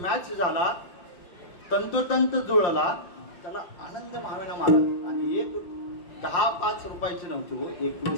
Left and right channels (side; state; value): right; late; 5.7 ms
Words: झाला, तंतोतंत जुळला. त्याला आनंद महाविना महाराज. आणि एक 10-5 रुपयाची नव्हती हो,